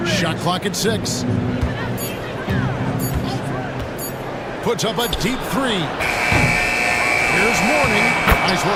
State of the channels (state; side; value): identical; both; correlation 1.00